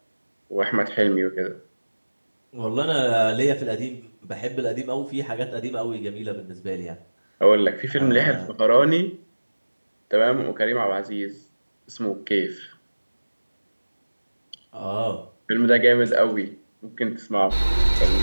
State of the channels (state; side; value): inverted; both; correlation -1.00